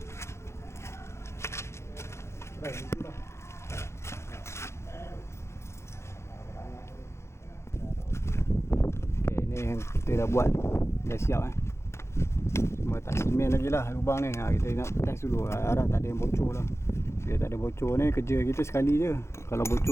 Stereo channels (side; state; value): right; late; 0.13 ms